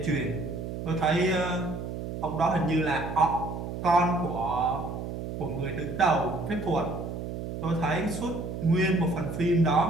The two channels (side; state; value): right; noise; hum, 6 dB below the sound